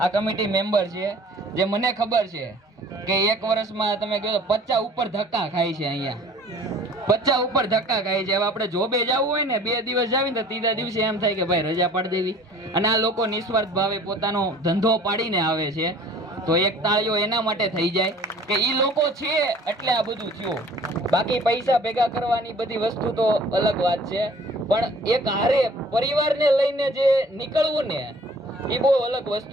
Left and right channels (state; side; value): normal; both; correlation 0.50